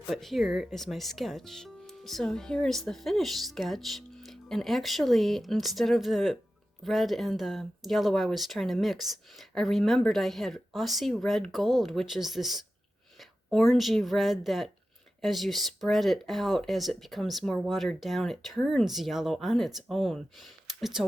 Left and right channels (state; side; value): normal; both; correlation 0.93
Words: But here is my sketch. So here is the finished sketch, and actually, instead of the red and the yellow I was trying to mix, I remembered I had Assie Red Gold, which is this orangey red that, as you spread it out, as it becomes more watered down, it turns yellow on its own. It's a